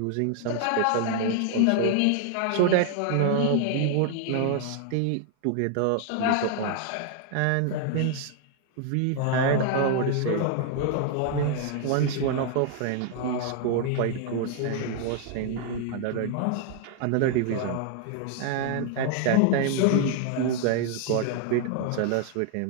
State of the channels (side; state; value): both; different; correlation 0.00